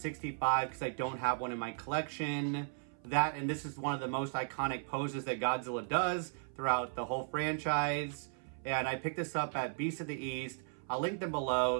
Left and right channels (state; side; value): silent; left; 54 dB below the other